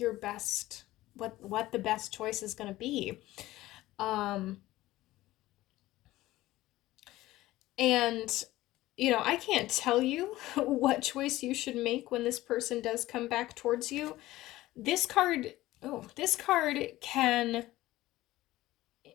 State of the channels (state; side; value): quieter; right; 16.8 dB